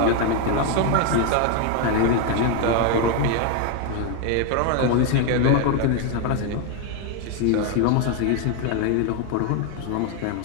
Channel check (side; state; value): both; different; correlation 0.01